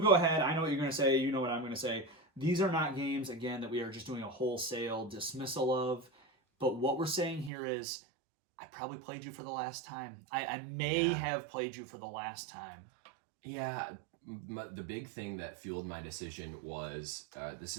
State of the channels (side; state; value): left; drops out; at 7.5 s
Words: go ahead. I know what you're going to say. You know what I'm going to say. These are not games, again, that we are just doing a wholesale dismissal of. But what we're saying here is, I probably played you for the last time. I may have played you for the last time. Yeah. The big thing that fueled my decision was this